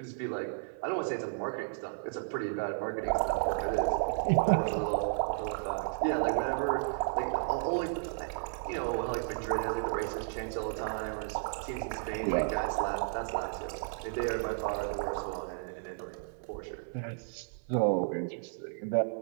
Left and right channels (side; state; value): left; silent; 56 dB below the other